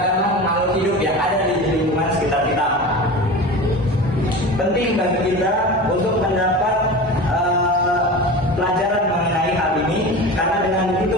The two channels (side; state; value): both; normal; correlation 0.31